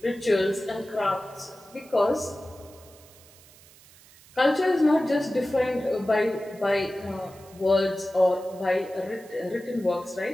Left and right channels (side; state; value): right; noise; hiss, 24 dB below the sound